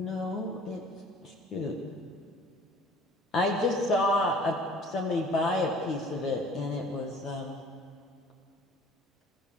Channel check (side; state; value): both; normal; correlation 0.50